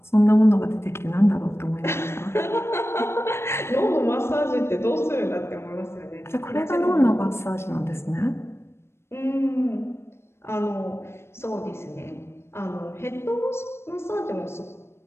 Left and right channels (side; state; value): right; late; 0.12 ms